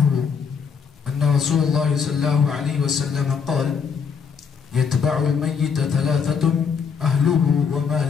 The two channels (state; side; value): quieter; right; 6.2 dB